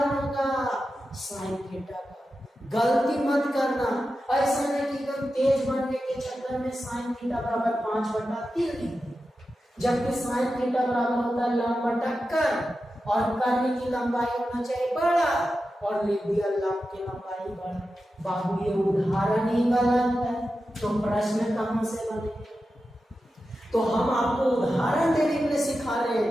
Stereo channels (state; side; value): normal; both; correlation 0.91